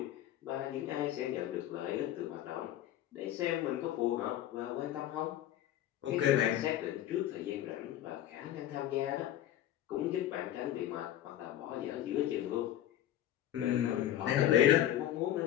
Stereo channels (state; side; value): quieter; right; 12.3 dB